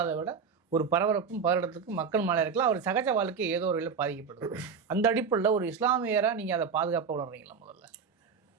விட ஒரு பரபரப்பும் பதட்டத்துக்கும் மக்கள் மேலே இருக்கலாம். அவர் சகஜ வாழ்க்கை ஏதோ ஒரு வகையில் பாதிக்கப்படுது. அந்த அடிப்படையில் ஒரு இஸ்லாமியராக நீங்கள் அதை பாதுகாப்பாக உணர்றீங்களா? முதல்ல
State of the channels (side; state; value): left; quieter; 6.0 dB